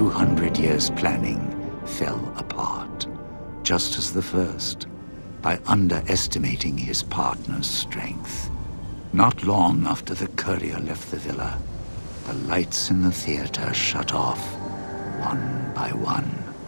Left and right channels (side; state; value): both; inverted; correlation -1.00